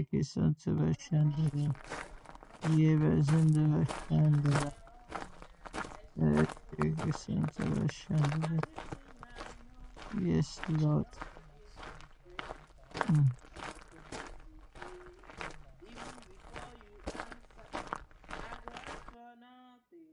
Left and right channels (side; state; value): both; identical; correlation 1.00